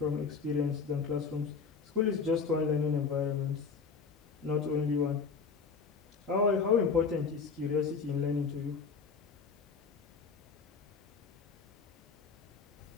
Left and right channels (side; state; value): right; quieter; 5.3 dB